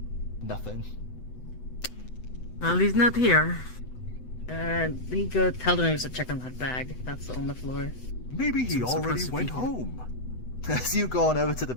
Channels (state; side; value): late; right; 8.0 ms